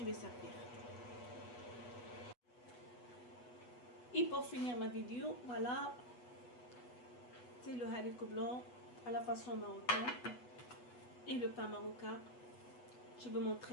vais servir. Et pour finir ma vidéo, voilà, c'est le haricot blanc à la façon marocaine et le pain marocain. Je vais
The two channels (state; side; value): late; right; 8.2 ms